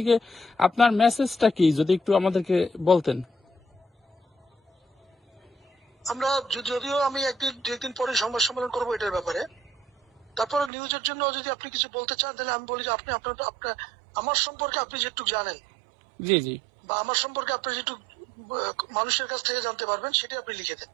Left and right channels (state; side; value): drops out; left; at 10.7 s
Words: আপনার মেসেজটা কি যদি একটু আমাদেরকে বলতেন। আমরা যদিও আমি একদিন পরে সংবাদ সম্মেলন করবো এটার ব্যাপারে, তারপরে নিউজের জন্য যদি আপনি কিছু বলতে চান তাহলে আমি বলি যে আপনি আপনার আমার সম্পর্কে আপনি যেটুকু জানেন, জি জি, বা আমার সম্পর্কে আপনি যেটুকু মানুষের কাছ থেকে জানতে পারবেন সেটা আপনি লিখে দেন।